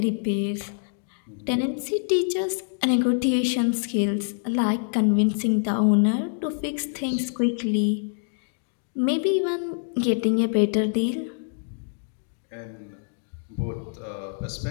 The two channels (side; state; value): right; silent; digital silence